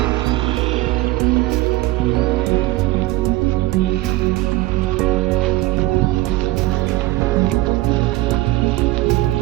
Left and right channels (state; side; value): quieter; left; 18.6 dB